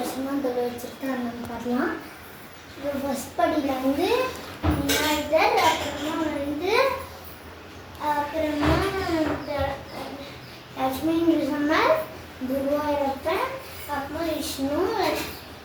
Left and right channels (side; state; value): both; identical; correlation 1.00